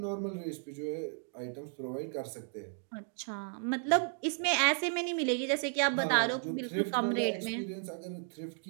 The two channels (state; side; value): silent; left; 55 dB below the other